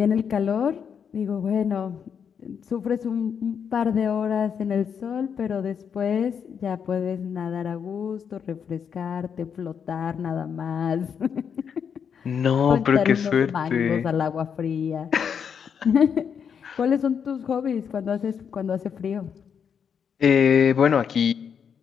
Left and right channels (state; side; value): quieter; right; 7.2 dB